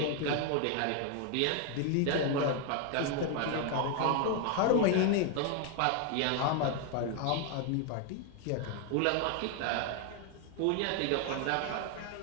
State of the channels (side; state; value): both; different; correlation 0.01